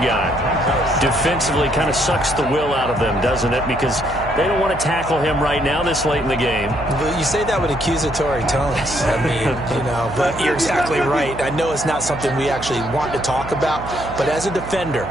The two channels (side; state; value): right; noise; hum, 12 dB below the sound